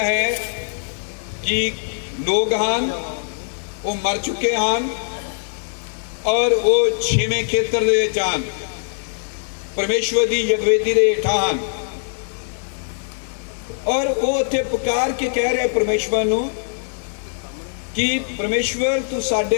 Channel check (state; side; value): silent; right; 57 dB below the other